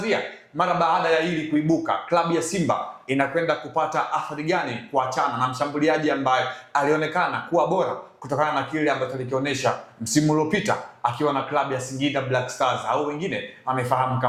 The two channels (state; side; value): identical; both; correlation 1.00